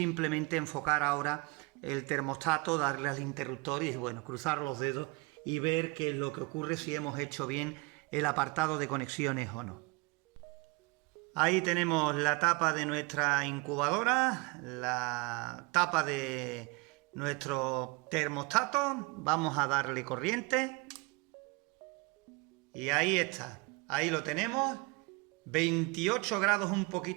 enfocar ahora el termostato, darle al interruptor y bueno, cruzar los dedos y ver qué es lo que ocurre, si hemos hecho bien el apartado de conexiones o no. Ahí tenemos la tapa de nuestra incubadora, la tapa de nuestro termostato. Vamos a darle corriente. Y ahí está, ahí lo tenemos. 28 grados, un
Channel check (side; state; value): left; quieter; 27.2 dB